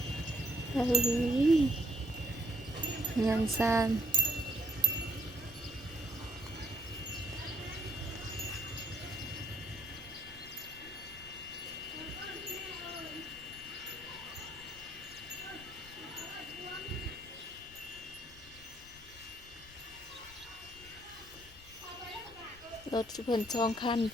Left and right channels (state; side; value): noise; left; rumble, 21 dB below the sound